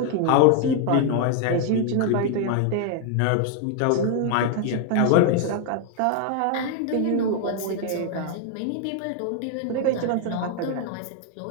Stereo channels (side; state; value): both; different; correlation 0.00